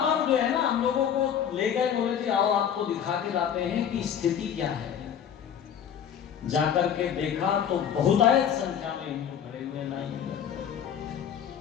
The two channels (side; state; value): right; quieter; 8.7 dB